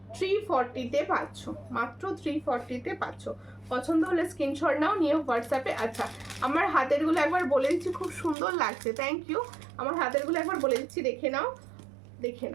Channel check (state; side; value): drops out; left; at 8.3 s